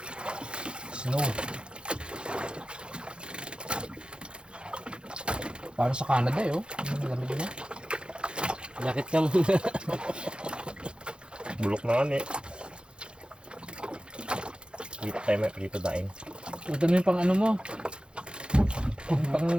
Snow. Parang sa Canada eh, oh. Ang lamig niya. Jakit ka muna. Bulok na nga eh. Dito tayo may dito daing. Ito na yung pang ano mo.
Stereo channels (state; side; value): late; left; 0.054 ms